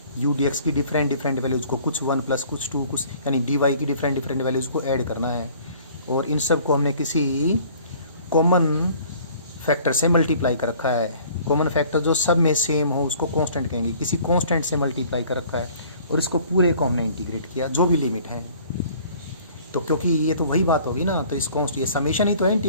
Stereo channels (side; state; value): both; inverted; correlation -0.53